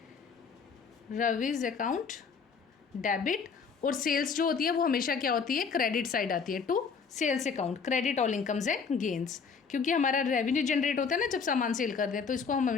रविज अकाउंट डेबिट। और सेल्स जो होती है वो हमेशा क्या होती है, क्रेडिट साइड आती है, to sales account credit all incomes and gains. क्योंकि हमारा रेवेन्यू जनरेट होता है ना जब सामान सेल करते हैं, तो इसको हम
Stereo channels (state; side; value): quieter; right; 5.7 dB